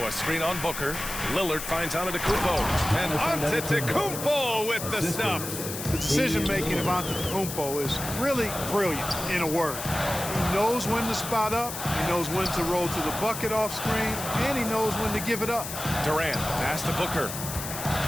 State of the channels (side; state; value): left; noise; hiss, 7 dB below the sound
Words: a screen on Booker. Lillard finds Antetokounmpo. And Antetokounmpo with the stuff. The decision-making of Antetokounmpo is really brilliant, in a word. He knows when to spot up, he knows when to roll to the bucket off screen, and he knows when to give it up. Durant, pass to Booker.